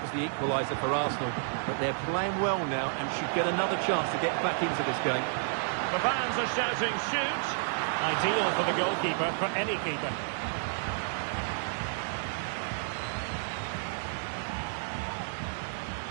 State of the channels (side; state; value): left; silent; digital silence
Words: the equaliser for Arsenal, but they're playing well now and should get another chance to get back into this game. The fans are shouting, shoot! Ideal for the goalkeeper, for any keeper.